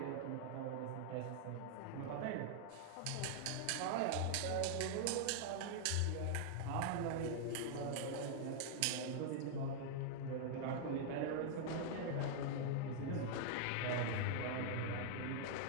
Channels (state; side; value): different; both; correlation -0.01